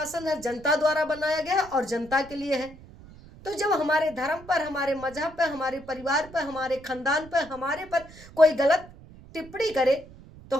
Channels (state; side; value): noise; right; rumble, 20 dB below the sound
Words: है, जनता द्वारा बनाया गया है और जनता के लिए है। तो जब हमारे धर्म पर, हमारे मजहब पर, हमारे परिवार पर, हमारे खानदान पर, हमारे पर कोई गलत टिप्पणी करे तो